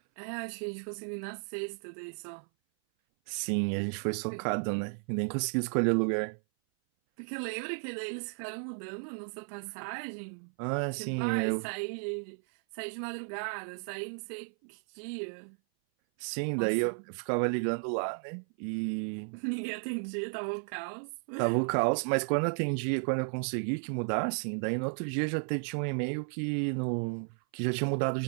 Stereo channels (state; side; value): silent; left; 55 dB below the other